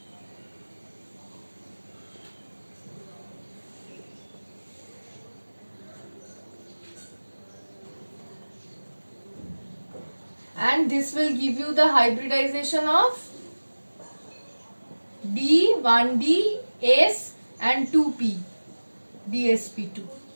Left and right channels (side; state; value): both; inverted; correlation -1.00